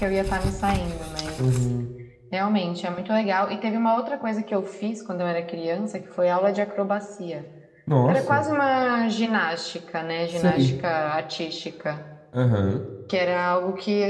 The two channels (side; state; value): both; identical; correlation 1.00